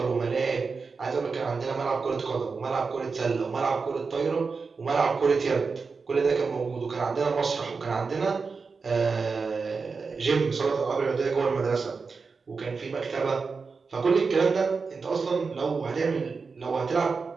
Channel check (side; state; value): left; quieter; 4.8 dB